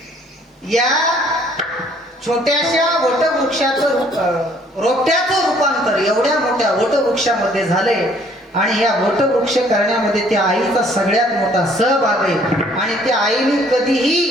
या छोट्याशा वटवृक्षाचं रोपट्याचं रूपांतर एवढ्या मोठ्या वटवृक्षामध्ये झाले आणि या वटवृक्ष करण्यामध्ये त्या आईचा सगळ्यात मोठा सहभाग आहे. आणि त्या आईने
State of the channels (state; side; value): normal; both; correlation 0.60